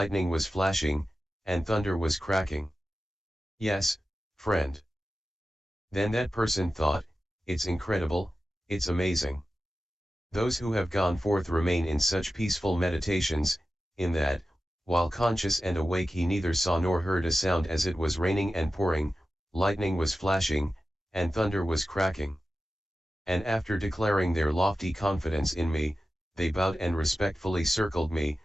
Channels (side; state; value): both; normal; correlation 0.93